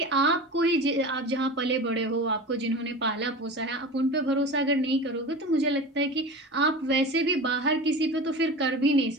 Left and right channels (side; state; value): both; normal; correlation 0.32